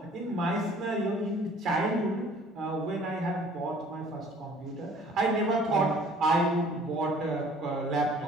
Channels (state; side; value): normal; both; correlation 0.53